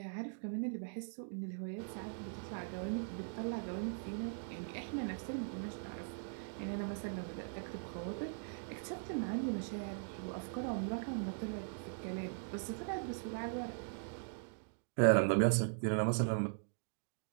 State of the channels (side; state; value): left; silent; digital silence